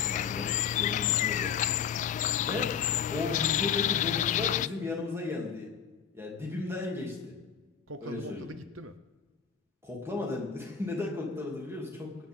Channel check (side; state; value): right; quieter; 7.3 dB